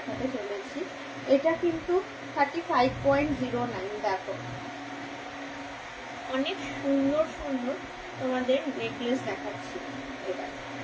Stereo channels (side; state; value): both; identical; correlation 1.00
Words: চলেছি। এটা কিন্তু 35.09। দেখো অনেক সুন্দর সুন্দর তোমাদের নেকলেস দেখাচ্ছি। এটা